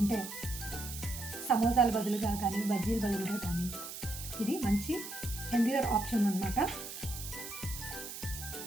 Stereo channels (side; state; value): right; noise; hiss, 9 dB below the sound